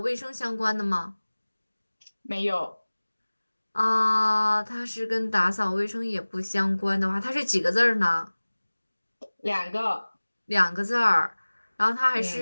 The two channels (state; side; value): inverted; both; correlation -1.00